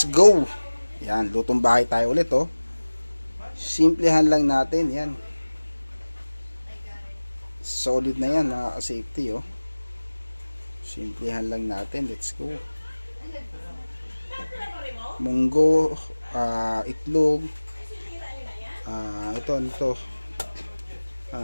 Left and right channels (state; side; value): inverted; both; correlation -1.00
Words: go. Yan, lutong bahay tayo ulit oh. Simplihan lang natin yan. Solid na yan mga ka-safety oh. Simplihan lang natin, let's go. Munggo, itlog, ito